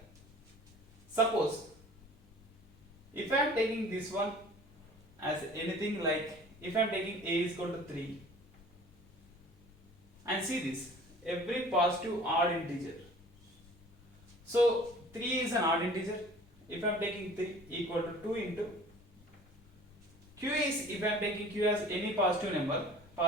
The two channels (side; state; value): both; normal; correlation 0.47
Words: suppose if I am taking this one as anything like, if I am taking a is equal to 3, and see this, every positive odd integer, so 3 is an odd integer, if I am taking 3 equal to 2 into q is, if I am taking q as any positive number,